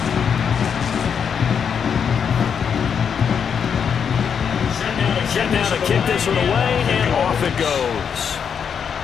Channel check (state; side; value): quieter; right; 7.2 dB